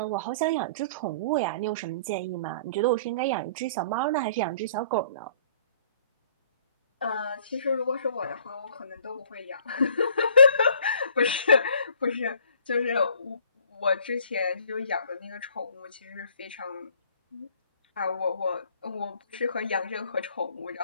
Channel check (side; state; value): both; inverted; correlation -0.56